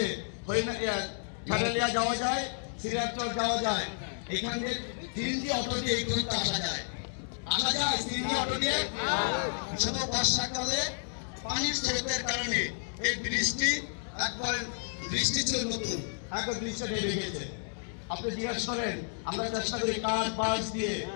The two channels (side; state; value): right; silent; 57 dB below the other